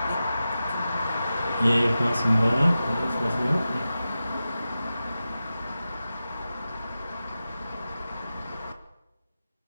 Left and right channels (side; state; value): both; inverted; correlation -0.93